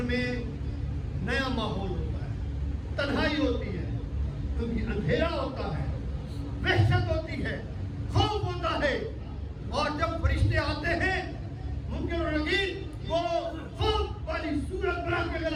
میں نیا ماحول ہوتا ہے، تنہائی ہوتی ہے، کیونکہ اندھیرا ہوتا ہے، وحشت ہوتی ہے، خوف ہوتا ہے. اور جب فرشتے آتے ہیں منکر و نکیر وہ خوف والی صورت بنا کے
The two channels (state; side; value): identical; both; correlation 1.00